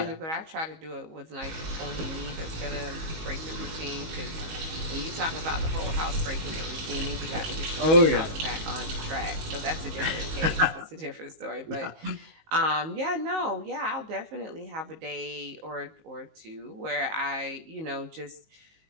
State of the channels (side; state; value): left; late; 19 ms